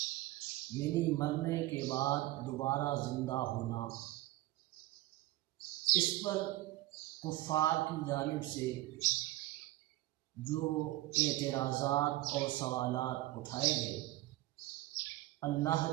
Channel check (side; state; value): left; quieter; 17.6 dB